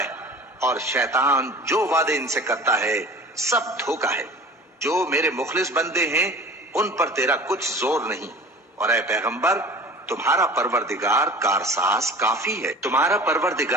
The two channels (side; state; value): both; normal; correlation 0.41